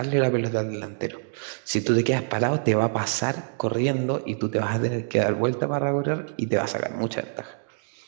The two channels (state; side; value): silent; left; digital silence